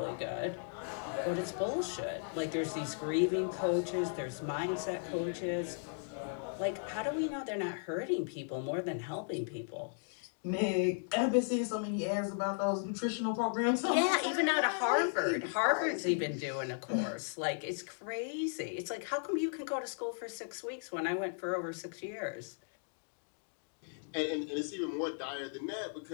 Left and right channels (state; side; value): silent; right; digital silence